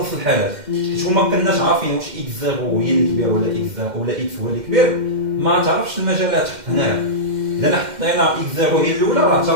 الحالات. حيت ما كناش عارفين واش اكس زيرو هي اللي كبير ولا اكس زيرو ولا اكس هو اللي كبير، ما تعرفش المجالات هنايا. اذا حطينا اكس زيرو هي الاولى راه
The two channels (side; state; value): left; late; 2.1 ms